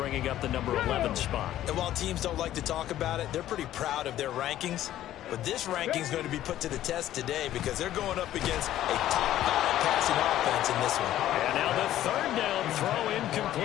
up the number 11 spot. And while teams don't like to talk about it, they're pretty proud of their rankings. But this ranking is going to be put to the test today because they're going up against a top-5 passing offense in this one. And now the 3rd down throw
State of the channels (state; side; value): quieter; right; 13.0 dB